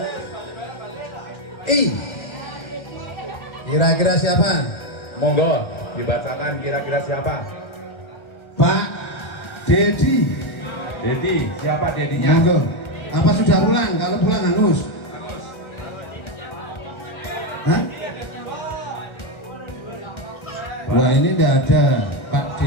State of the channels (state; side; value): late; right; 1.3 ms